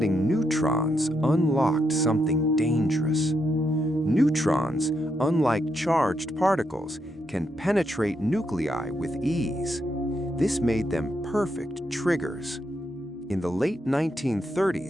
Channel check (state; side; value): normal; both; correlation 0.80